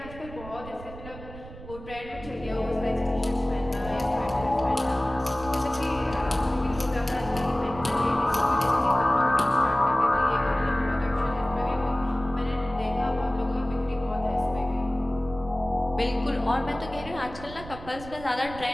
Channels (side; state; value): right; noise; rumble, 15 dB below the sound